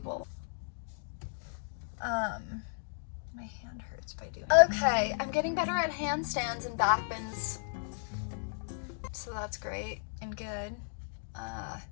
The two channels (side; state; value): right; silent; digital silence